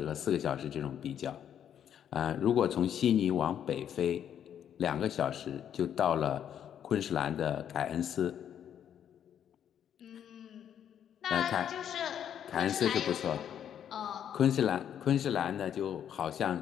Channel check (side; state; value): right; quieter; 9.4 dB